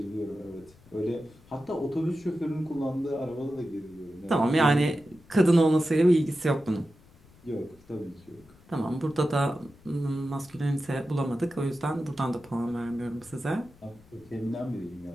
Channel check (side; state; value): left; noise; rumble, 26 dB below the sound